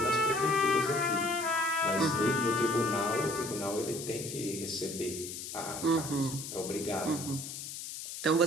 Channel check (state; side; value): noise; left; hiss, 8 dB below the sound